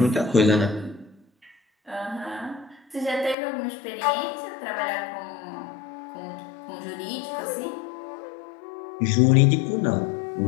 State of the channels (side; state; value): right; drops out; at 3.4 s